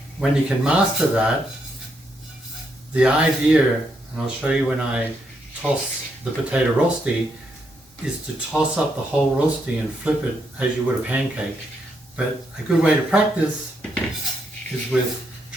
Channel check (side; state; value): both; normal; correlation 0.78